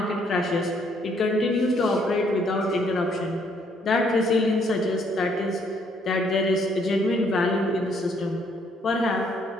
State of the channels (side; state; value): both; normal; correlation 0.68